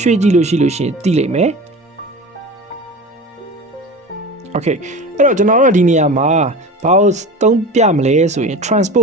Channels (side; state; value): both; normal; correlation 0.32